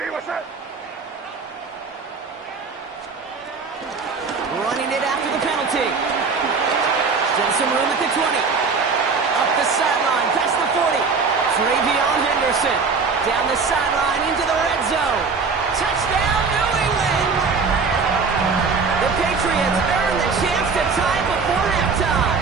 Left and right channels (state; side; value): quieter; left; 4.9 dB